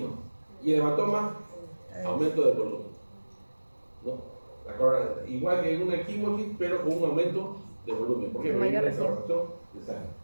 Y el hematoma, aumento de volumen. ¿No? Igual que en una equimosis, pero con un aumento de volumen. ¿Por qué? Porque hay una evaporación de sangre.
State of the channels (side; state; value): both; inverted; correlation -1.00